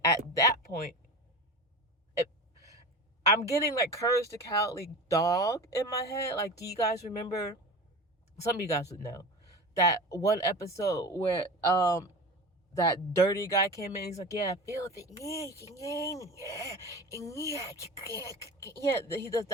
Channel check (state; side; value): normal; both; correlation 0.31